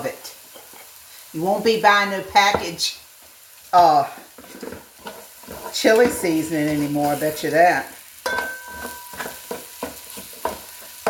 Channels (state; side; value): identical; both; correlation 1.00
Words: it. You won't be buying no package chili seasoning anymore, I bet you that.